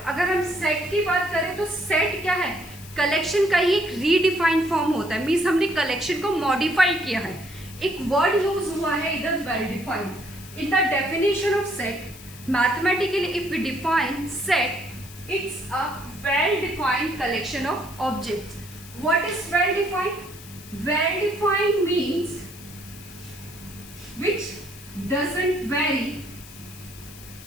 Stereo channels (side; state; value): left; noise; hiss, 18 dB below the sound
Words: अगर हम सेट की बात करें तो सेट क्या है, कलेक्शन का ही एक रीडिफाइंड फॉर्म होता है. मीन्स हमने कलेक्शन को मॉडिफाई किया है. एक वर्ड यूज हुआ है इधर well defined. In the definition of set mathematically if we define set, it's a well defined collection of objects. What is well defined? Well defined means which doesn't vary